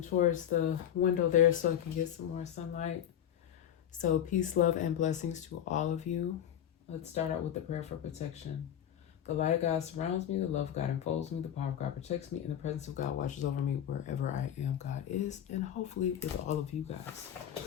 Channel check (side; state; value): right; quieter; 10.2 dB